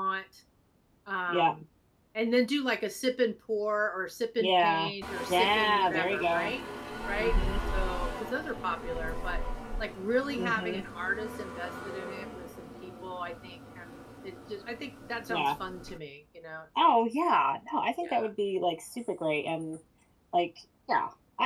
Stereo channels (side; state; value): both; identical; correlation 1.00